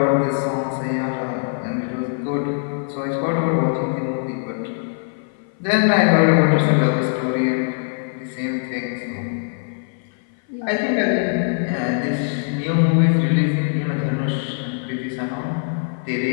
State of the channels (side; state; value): right; silent; 58 dB below the other